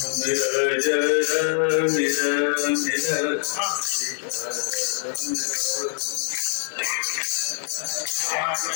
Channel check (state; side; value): silent; right; 62 dB below the other